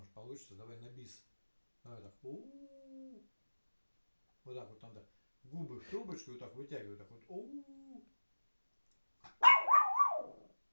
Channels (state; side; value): inverted; both; correlation -1.00